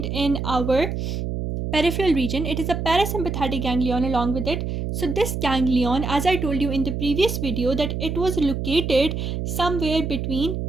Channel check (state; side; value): noise; right; hum, 3 dB below the sound